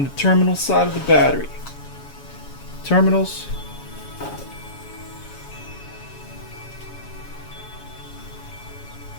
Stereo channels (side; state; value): right; late; 7.2 ms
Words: the terminal side of the battery. Terminals.